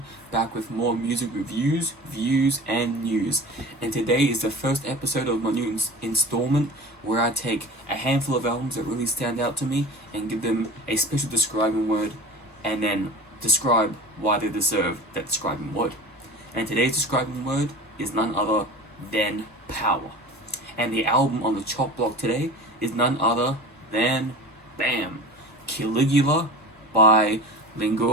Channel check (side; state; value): both; normal; correlation 0.36